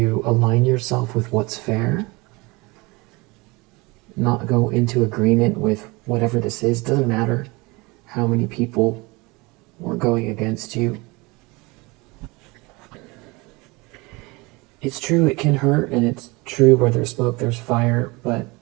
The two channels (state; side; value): quieter; left; 24.9 dB